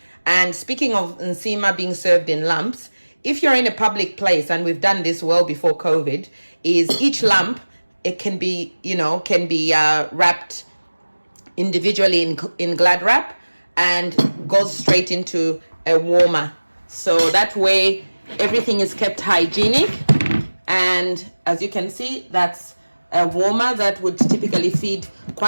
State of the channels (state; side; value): inverted; both; correlation -1.00